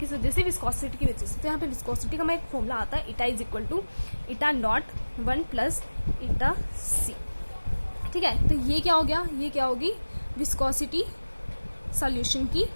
वजह से, विस्कोसिटी की वजह से। तो यहाँ पे विस्कोसिटी का मैं एक फॉर्मूला आता है, इटा इज इक्वल टू इटा नॉट 1 प्लस इटा C, ठीक है। तो ये क्या हो गया, ये क्या होगी, विस्कोसिटी सॉल्यूशन की,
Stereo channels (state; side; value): inverted; both; correlation -1.00